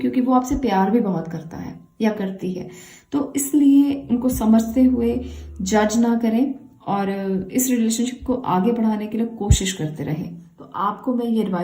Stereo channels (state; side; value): identical; both; correlation 1.00